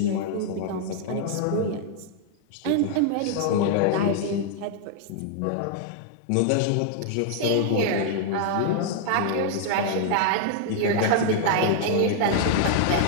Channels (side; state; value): both; different; correlation -0.01